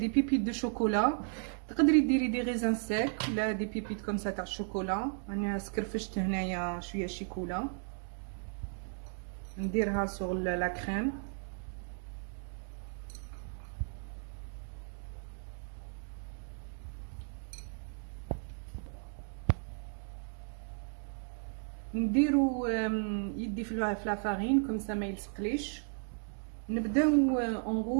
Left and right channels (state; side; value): silent; left; 55 dB below the other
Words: بيبيت دو شوكولا. تقدري ديري دي غيزان سيك ولا دي بيبيت كوم سا تاع الشوكولا. انا سكرفشت هنايا شويه شيكولا نديرها سور لا كريم. نديرو يدي في لا فارين كوم سا ما يلصقليش. نبداو